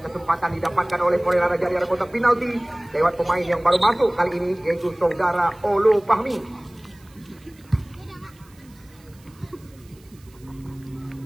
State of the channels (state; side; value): noise; right; hiss, 28 dB below the sound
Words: kesempatan didapatkan oleh Porela Raja di area kotak penalti lewat pemain yang baru masuk kali ini, yaitu Saudara Olo Fahmi.